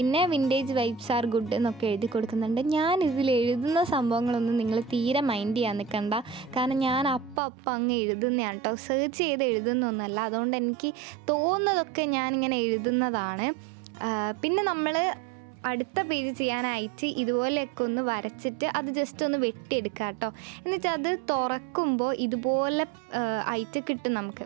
വിൻറ്റേജ് വൈബ്സ് ആർ ഗുഡ് എന്നൊക്കെ എഴുതി കൊടുക്കുന്നുണ്ട്. ഞാൻ ഇതിൽ എഴുതുന്ന സംഭവങ്ങളൊന്നും നിങ്ങൾ തീരെ മൈൻഡ് ചെയ്യാൻ നിൽക്കണ്ട, കാരണം ഞാൻ അപ്പം അങ്ങ് എഴുതുന്നതാണ് കേട്ടോ, സെർച്ച് ചെയ്ത് എഴുതുന്നൊന്നുമല്ല. അതുകൊണ്ട് എനിക്ക് തോന്നുന്നതൊക്കെ ഞാനിങ്ങനെ എഴുതുന്നതാണ്. പിന്നെ നമ്മൾ അടുത്ത പേജ് ചെയ്യാനായിട്ട് ഇതുപോലെയൊക്കെ ഒന്ന് വരച്ചിട്ട് അത് ജസ്റ്റ് ഒന്ന് വെട്ടിയെടുക്കുക കേട്ടോ. എന്നിട്ട് അത് തുറക്കുമ്പോൾ ഇതുപോലെ ആയിട്ട് കിട്ടും നമുക്ക്.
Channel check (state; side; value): drops out; left; at 7.4 s